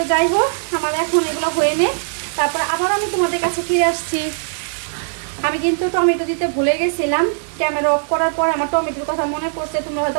যাই হোক, আমার এখন এগুলো হয়ে নেই, তারপরে আবার আমি তোমাদের কাছে ফিরে আসছি। আমি কিন্তু টমেটো দিতে ভুলে গেছিলাম, ক্যামেরা অফ করার পর আমার টমেটোর কথা মনে পড়ছে। তোমরা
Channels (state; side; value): silent; left; digital silence